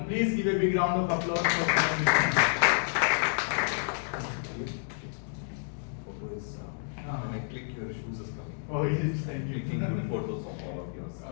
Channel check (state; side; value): silent; right; digital silence